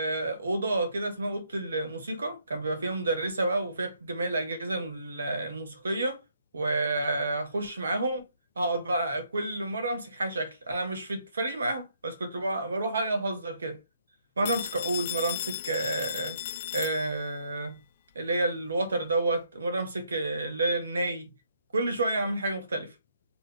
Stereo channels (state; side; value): inverted; both; correlation -0.72